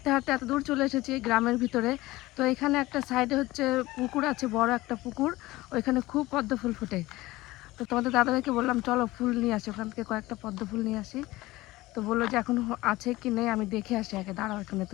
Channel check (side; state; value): right; quieter; 18.8 dB